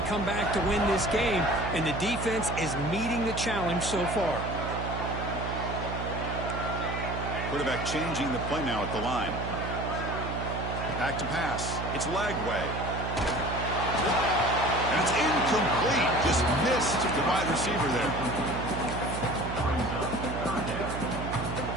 come back to win this game, and the defense is meeting the challenge so far. Quarterback changing the play now at the line. Back to pass. It's Lagway. And it's incomplete. Just missed the wide receiver there.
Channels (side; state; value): right; noise; hum, 5 dB below the sound